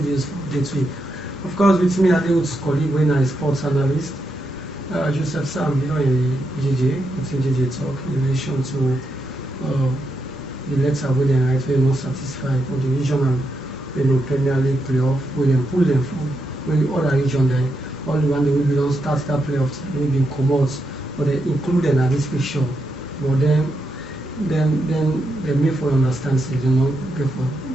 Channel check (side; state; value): both; normal; correlation 0.83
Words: for day 3. Of course, with me, I deal with colleague when I sports analyst, Joseph Sam, in JJ, within JJ talk in relation to the letter where they write we're not satisfied for the regional, Premier League playoff, where they pull them from, when the other region there, all the one they will be don't start that playoffs, they will be commodities, but they include them at this picture, but then they may for understand, so they not go for